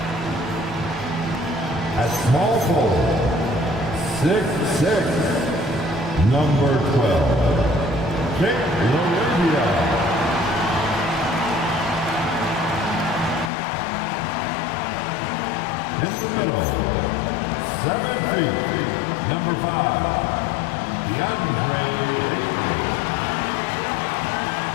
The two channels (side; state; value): right; drops out; at 13.5 s